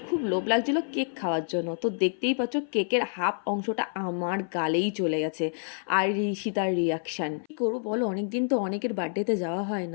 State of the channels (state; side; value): silent; right; 59 dB below the other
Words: খুব লোভ লাগছিল কেক খাওয়ার জন্য, তো দেখতেই পাচ্ছ কেকের হাফ অংশটা আমার গালেই চলে গেছে। আর ঈশিতার রিয়াকশান কী করবো বলো, অনেকদিন তো অনেকের বার্থডেতে যাওয়া হয়